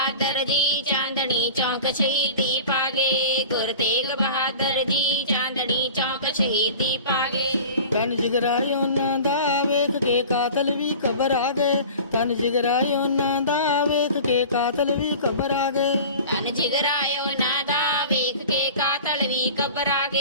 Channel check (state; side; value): inverted; both; correlation -0.38